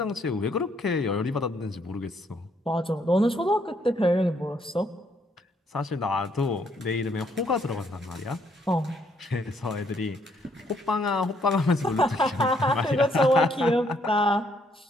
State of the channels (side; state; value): both; normal; correlation 0.70